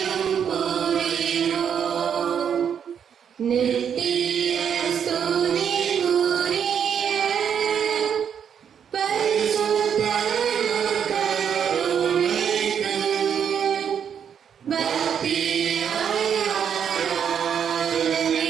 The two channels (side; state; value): left; quieter; 8.0 dB